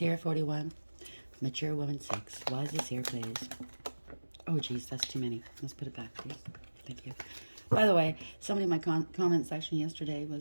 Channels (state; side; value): inverted; both; correlation -1.00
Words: 41. Mature woman, 6. Why is this here, please? Oh, geez, that's too many. Let's put it back, please. Thank you. By the way, somebody in my comment section yesterday